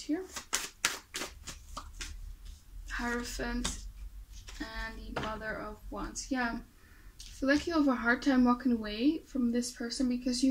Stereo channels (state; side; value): identical; both; correlation 1.00